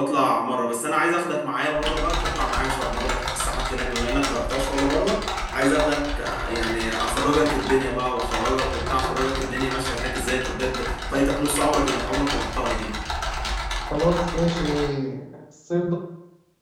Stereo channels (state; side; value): identical; both; correlation 1.00